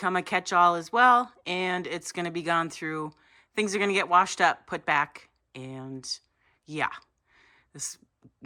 a catch-all as well, and it's going to be gone through. Things are going to get washed up, put back, and yeah, this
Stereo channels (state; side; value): identical; both; correlation 1.00